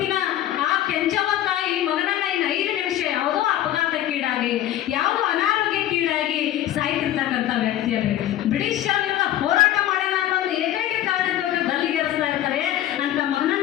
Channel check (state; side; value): quieter; right; 12.7 dB